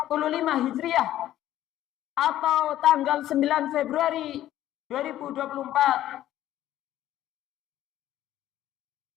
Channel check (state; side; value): quieter; right; 13.2 dB